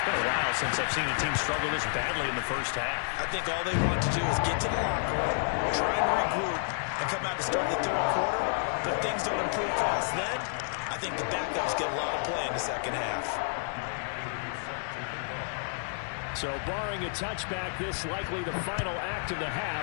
been a while since I've seen a team struggle this badly in the first half. I think all they want to do is get to the locker room, try and regroup, and come out to start the 3rd quarter. But if things don't improve fast then, I think the backups get a lot of play in the 2nd half. So barring a touchback, this likely the final act of the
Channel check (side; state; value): right; silent; digital silence